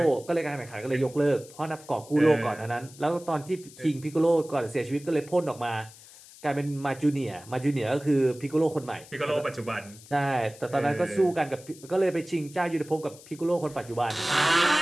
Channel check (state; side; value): noise; left; hiss, 20 dB below the sound